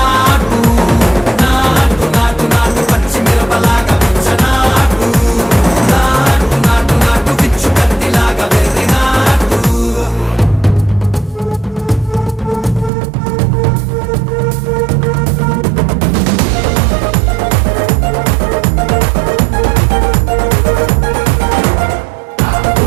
నాటు నాటు నాటు పచ్చి మిరపలాగా నాటు నాటు నాటు నాటు పిచ్చు కత్తిలాగా వెర్రి నాటు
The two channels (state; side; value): drops out; left; at 12.9 s